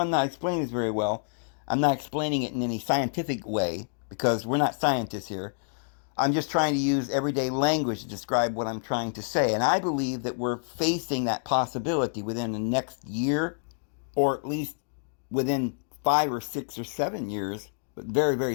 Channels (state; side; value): silent; right; 59 dB below the other